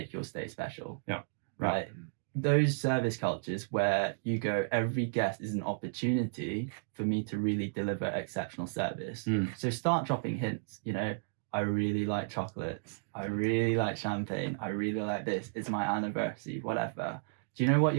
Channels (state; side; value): silent; left; digital silence